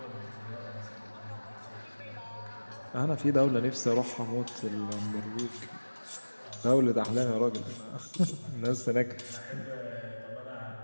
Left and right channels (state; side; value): inverted; both; correlation -1.00